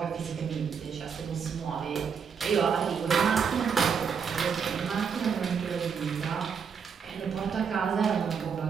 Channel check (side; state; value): left; quieter; 6.6 dB